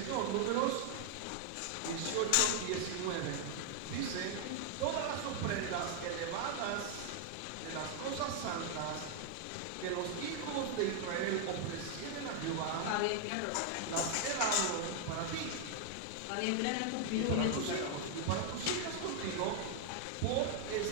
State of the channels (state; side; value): different; both; correlation 0.00